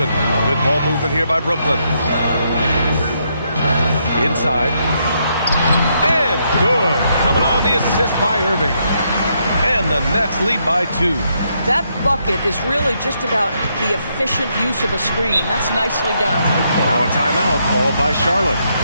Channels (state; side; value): inverted; both; correlation -0.76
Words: Good ball movement here by Brooklyn. Inside. And good. Coming on the assist by Irving. And the Nets lead by 2. That bucket is really just about the efficient use of a screen. That's nicely done. Now a timeout called by Charlotte.